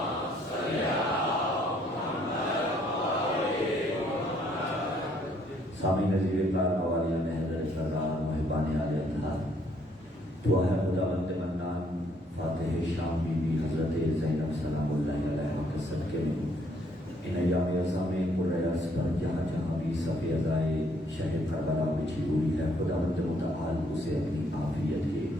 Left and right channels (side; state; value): both; normal; correlation 0.66